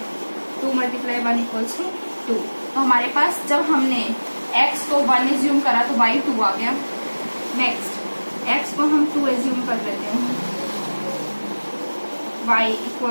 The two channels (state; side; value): inverted; both; correlation -1.00